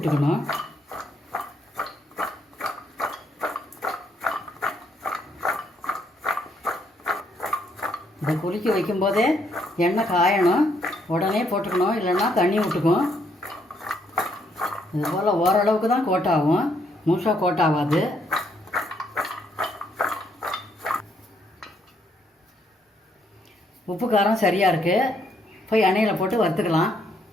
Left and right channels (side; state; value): both; normal; correlation 0.72